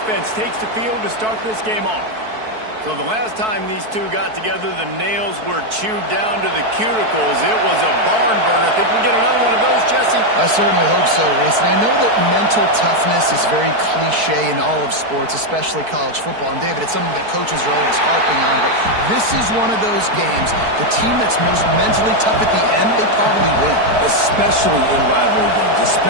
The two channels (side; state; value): left; late; 4.6 ms